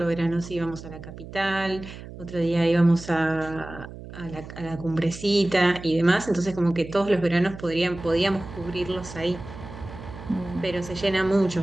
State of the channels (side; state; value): right; noise; hum, 14 dB below the sound